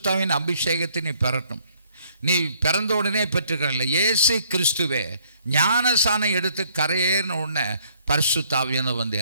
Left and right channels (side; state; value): both; inverted; correlation -0.64